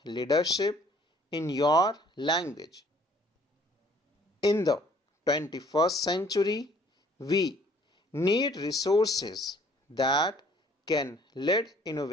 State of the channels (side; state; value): both; normal; correlation 0.58